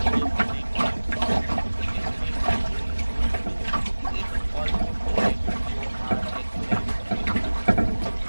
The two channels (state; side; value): inverted; both; correlation -1.00